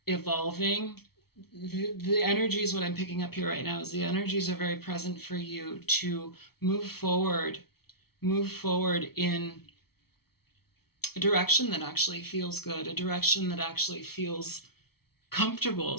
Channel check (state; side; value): late; right; 0.95 ms